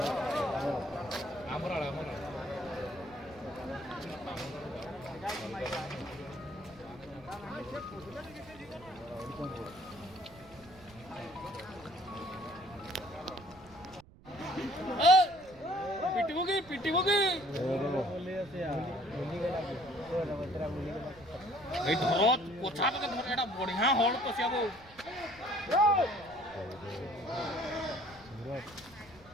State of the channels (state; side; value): noise; right; rumble, 23 dB below the sound